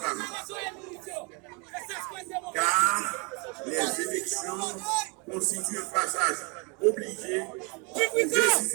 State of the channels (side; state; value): left; quieter; 32.1 dB